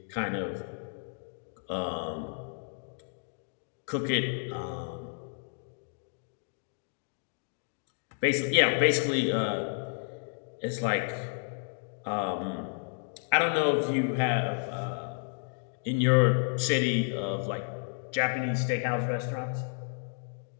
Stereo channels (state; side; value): silent; right; 57 dB below the other